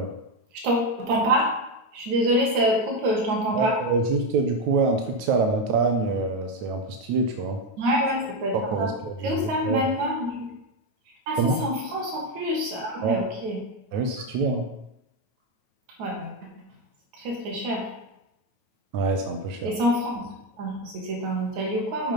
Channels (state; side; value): late; left; 9.2 ms